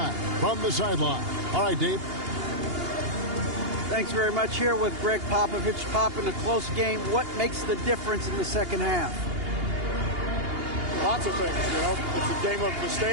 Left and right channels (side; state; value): left; late; 2.8 ms